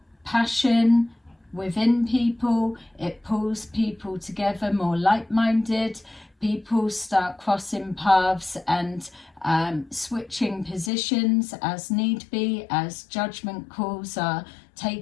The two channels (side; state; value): right; drops out; at 10.9 s